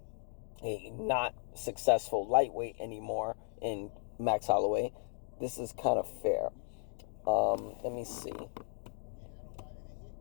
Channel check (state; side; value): silent; right; digital silence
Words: a not successful lightweight anymore in Max Holloway. This is kind of fair. Let me see.